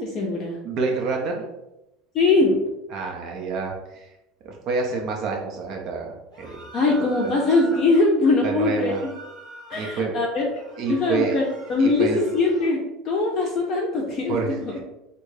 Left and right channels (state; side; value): normal; both; correlation 0.35